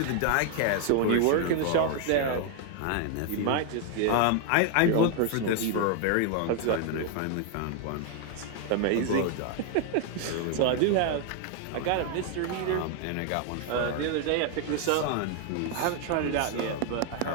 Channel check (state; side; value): different; both; correlation 0.00